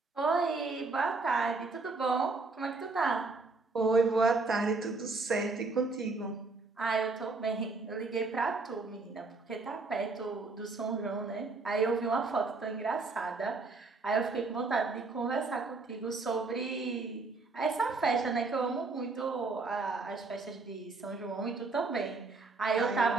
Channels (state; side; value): quieter; left; 3.8 dB